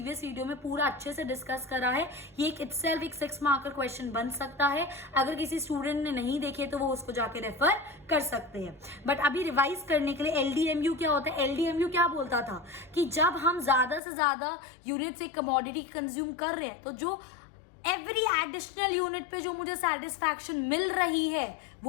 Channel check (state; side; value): drops out; right; at 14.0 s